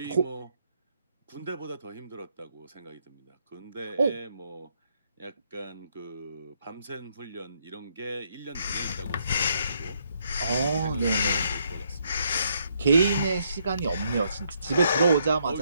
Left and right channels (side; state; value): both; inverted; correlation -0.73